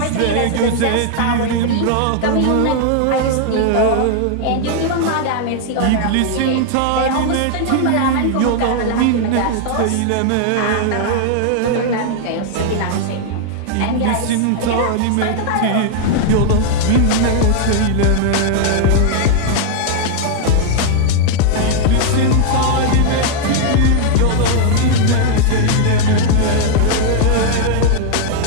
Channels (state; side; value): different; both; correlation 0.00